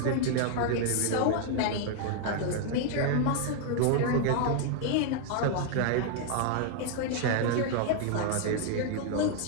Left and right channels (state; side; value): different; both; correlation 0.00